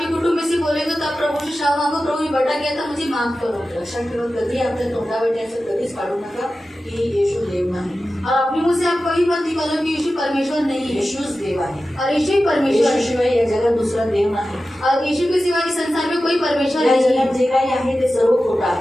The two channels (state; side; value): normal; both; correlation 0.94